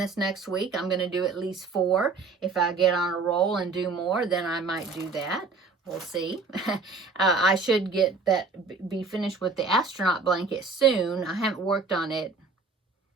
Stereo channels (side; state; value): left; quieter; 4.2 dB